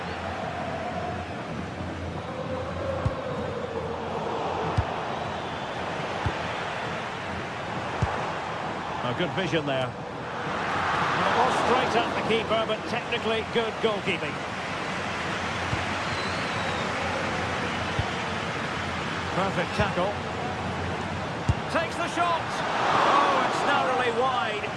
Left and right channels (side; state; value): both; identical; correlation 1.00